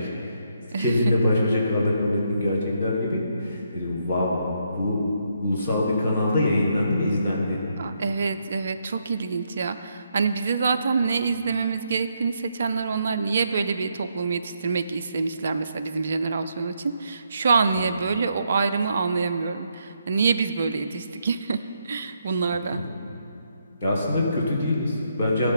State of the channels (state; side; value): inverted; both; correlation -0.77